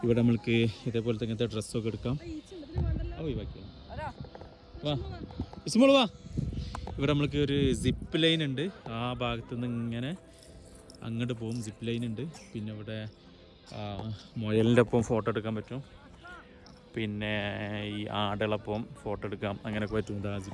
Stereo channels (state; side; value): identical; both; correlation 1.00